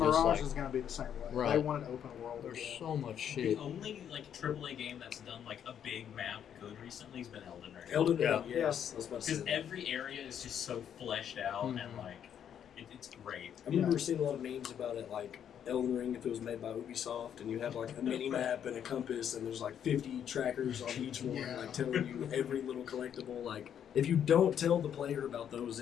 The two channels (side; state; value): right; quieter; 9.1 dB